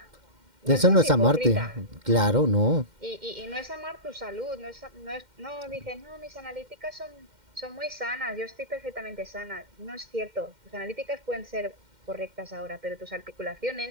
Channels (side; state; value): left; late; 2.1 ms